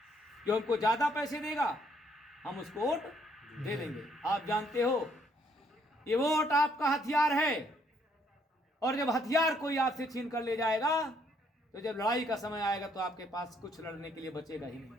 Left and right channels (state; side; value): normal; both; correlation 0.68